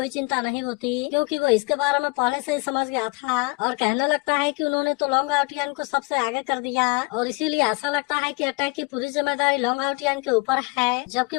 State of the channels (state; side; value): quieter; right; 27.7 dB